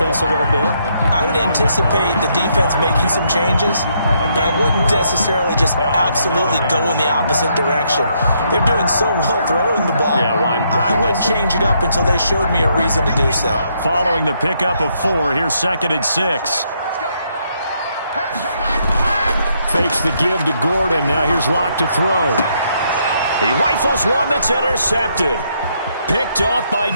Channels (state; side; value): inverted; both; correlation -0.74